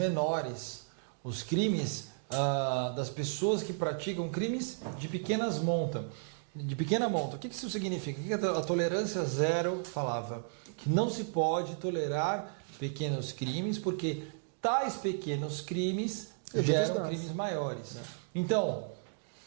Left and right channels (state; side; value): silent; left; digital silence